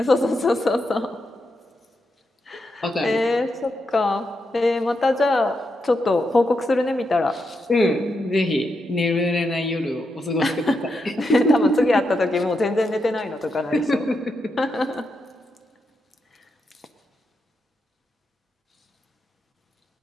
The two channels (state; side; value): normal; both; correlation 0.84